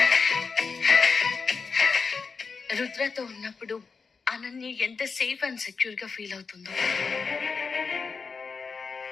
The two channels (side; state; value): right; quieter; 5.0 dB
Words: రుద్రతో ఉన్నప్పుడు అనన్య ఎంత సేఫ్ అండ్ సెక్యూర్ గా ఫీల్ అవుతుందో.